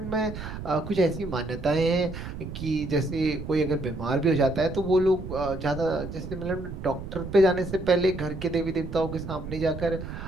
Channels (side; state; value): right; noise; rumble, 9 dB below the sound